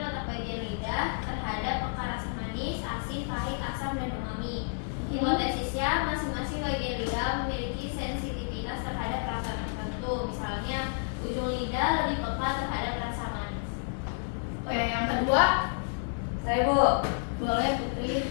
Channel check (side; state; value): right; silent; digital silence